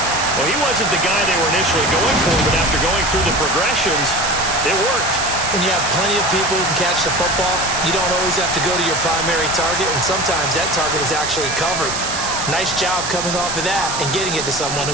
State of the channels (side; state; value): right; noise; hiss, 4 dB below the sound